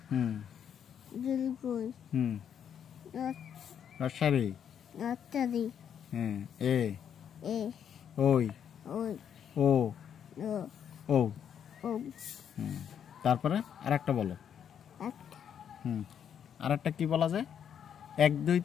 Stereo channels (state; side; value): quieter; right; 8.5 dB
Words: রসারি এ ওই ও ও তারপরে আরেকটা বলো আরেকটা কি বলা যায় 1 2